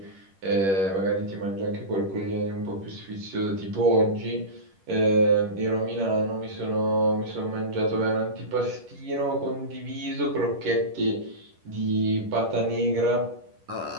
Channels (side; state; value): left; late; 10 ms